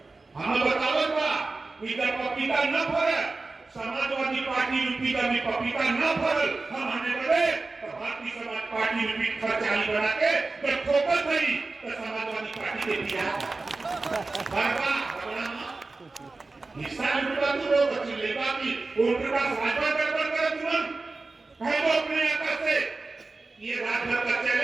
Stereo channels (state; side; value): quieter; left; 3.6 dB